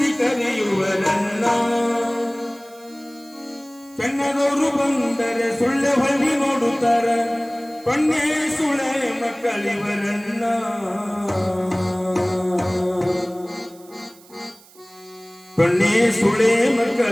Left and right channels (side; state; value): right; noise; hiss, 25 dB below the sound